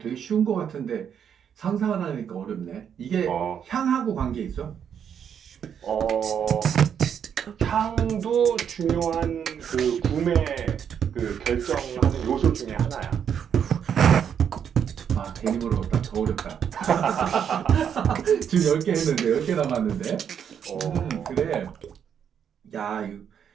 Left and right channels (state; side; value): quieter; left; 8.2 dB